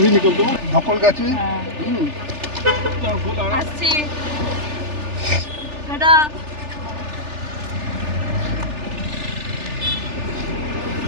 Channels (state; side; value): late; left; 3.4 ms